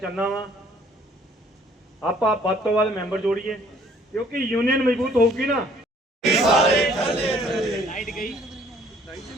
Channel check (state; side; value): normal; both; correlation 0.60